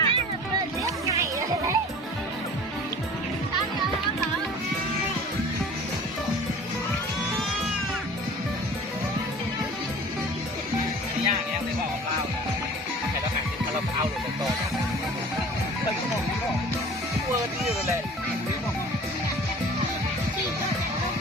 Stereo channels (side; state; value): both; normal; correlation 0.44